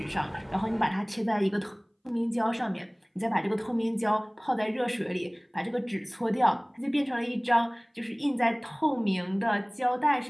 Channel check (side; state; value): both; identical; correlation 1.00